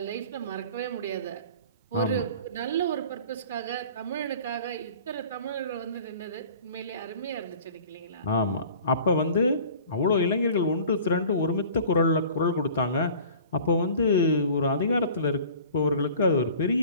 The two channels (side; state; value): both; inverted; correlation -0.45